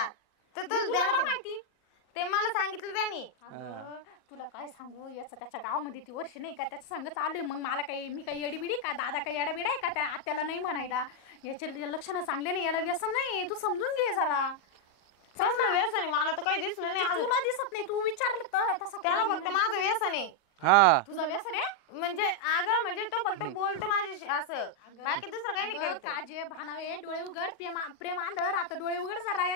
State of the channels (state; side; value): late; right; 40 ms